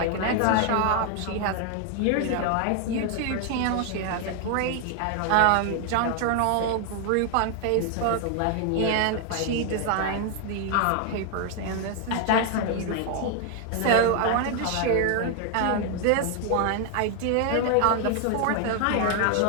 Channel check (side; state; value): both; different; correlation 0.00